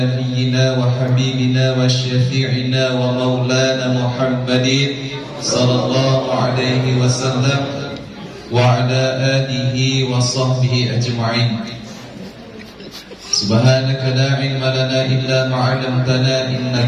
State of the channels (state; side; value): identical; both; correlation 1.00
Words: wa habibina wa syafi'ina wa maulana Muhammadin sallallahu alaihi wasallam wa ala alihi wa sahbihi ajma'in. Subhanaka la ilma lana illa ma 'allamtana